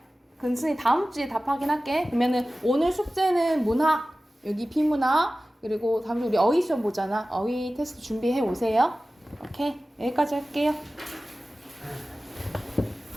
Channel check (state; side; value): normal; both; correlation 0.96